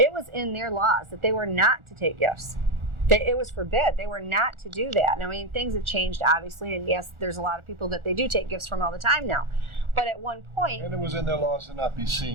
was in their laws that they were not to take gifts. It was forbid. They were not to do that. And things have changed, obviously, and yes, there's a lot of people that they do take gifts from all the time now. But at one point... And it was in their laws to not be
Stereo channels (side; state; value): left; late; 1.4 ms